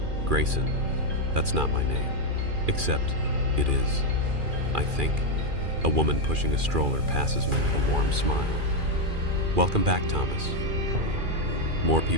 Grayson, that's not my name. Except, it is. I think. A woman pushing a stroller passes me with a warm smile. "Welcome back, Thomas." More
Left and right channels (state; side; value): late; left; 2.4 ms